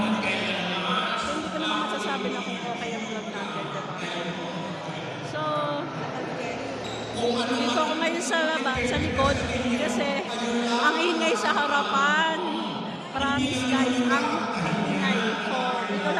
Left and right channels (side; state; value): both; identical; correlation 1.00